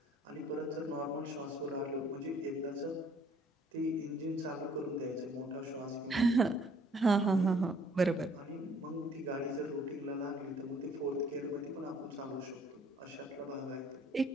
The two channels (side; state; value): both; normal; correlation 0.60